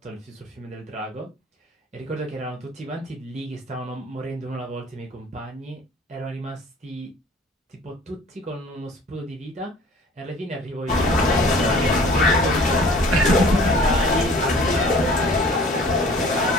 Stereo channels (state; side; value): normal; both; correlation 0.49